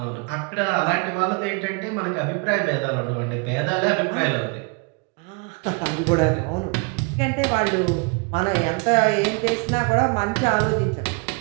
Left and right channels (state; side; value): quieter; left; 30.4 dB